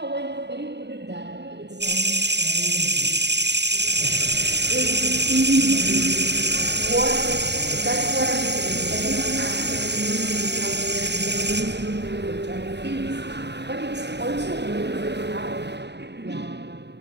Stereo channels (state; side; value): late; left; 0.50 ms